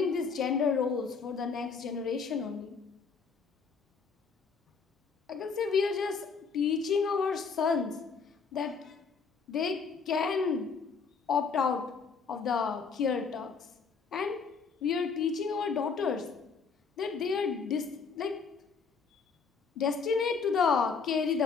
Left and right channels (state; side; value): quieter; right; 5.4 dB